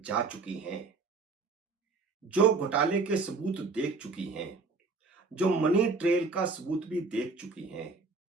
चुकी हैं, जो घोटाले के सबूत देख चुकी हैं, जो मनी ट्रेल का सबूत भी देख चुकी हैं।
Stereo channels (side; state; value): left; quieter; 4.1 dB